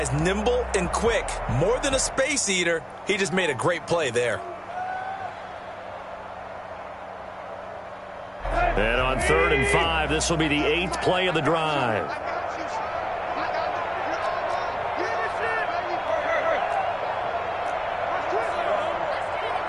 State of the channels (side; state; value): both; identical; correlation 1.00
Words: nimble and quick. More than a space eater. He just made a great play there. And on 3rd and 5, this will be the 8th play of the drive.